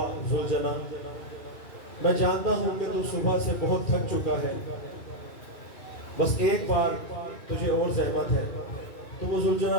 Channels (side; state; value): right; late; 2.7 ms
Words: ذوالجناح، میں جانتا ہوں کہ تو صبح سے بہت تھک چکا ہے، بس ایک بار تجھے اور زحمت ہے۔ تو وہ